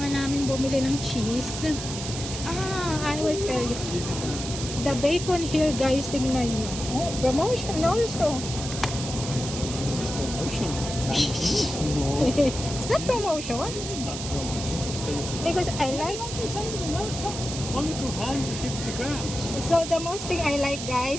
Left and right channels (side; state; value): right; noise; hiss, 7 dB below the sound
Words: namin bumili ng cheese. I will tell you. The bacon here, guys, tingnan nyo. Oh, promotion also. This is promotion. No. It's not promotion. Not promotion. Because I like only 250 grams. So the most thing I like